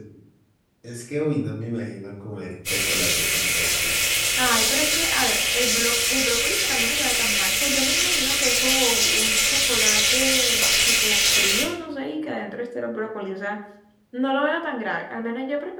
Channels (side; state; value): both; identical; correlation 1.00